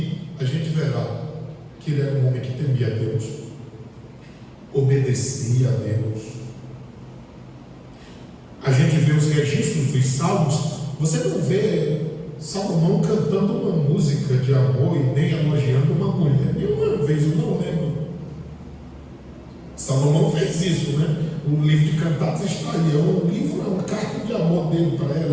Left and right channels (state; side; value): identical; both; correlation 1.00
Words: a gente verá que ele era um homem que temia a Deus, obedecia a Deus. A gente vê os registros dos salmos, você não vê Salomão cantando uma música de amor e nem elogiando uma mulher. Nenhuma vez, eu não lembro. Salomão fez isso, né? O livro de Cantares está aí. É um livro, é uma carta de amor dele para